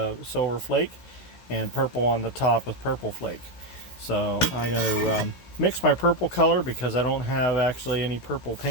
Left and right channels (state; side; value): late; right; 16 ms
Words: silver flake, and purple on the top with purple flake. So I'm going to mix my purple color because I don't have actually any purple